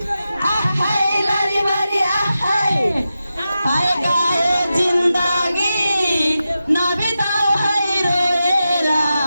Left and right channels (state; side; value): inverted; both; correlation -0.91